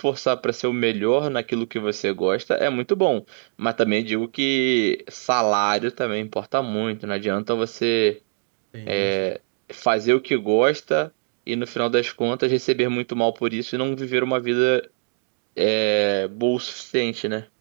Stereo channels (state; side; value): silent; left; digital silence